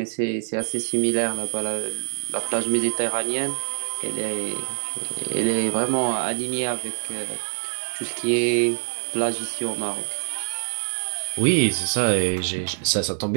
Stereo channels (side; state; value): left; silent; 62 dB below the other